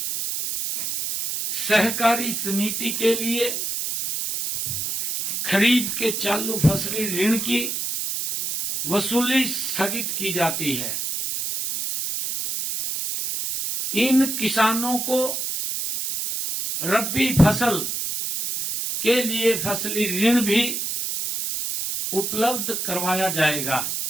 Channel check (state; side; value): noise; right; hiss, 3 dB below the sound